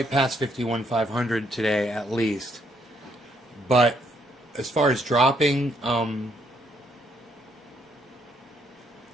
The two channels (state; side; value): normal; both; correlation 0.71